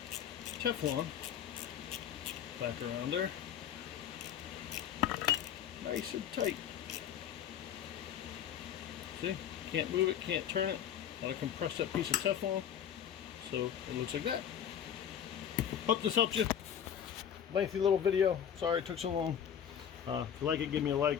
Teflon back around there. Nice and tight. See? Can't move it, can't turn it. That'll compress that piece of Teflon. So it looks like that. Hope this helps you. Lengthy little video. Sorry it took so long. If you like it, give me a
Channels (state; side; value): quieter; right; 9.1 dB